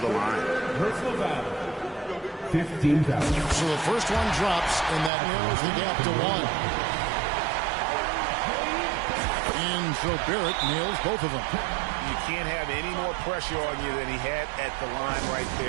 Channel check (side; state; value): left; drops out; at 5.1 s